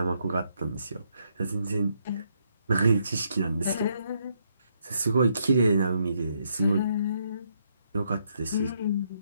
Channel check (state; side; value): inverted; both; correlation -0.75